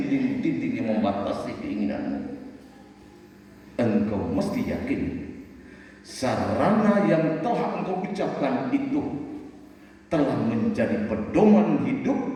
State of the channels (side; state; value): both; identical; correlation 1.00